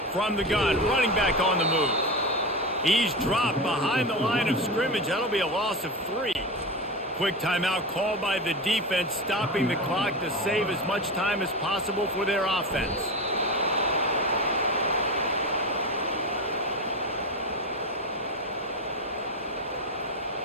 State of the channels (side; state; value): both; normal; correlation 0.21